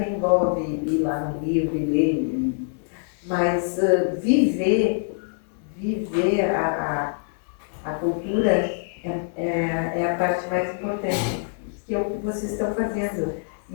envolve ir lá no livro e ler, mas viver a cultura é a parte mais importante, que é o que vocês estão fazendo. E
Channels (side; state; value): right; silent; digital silence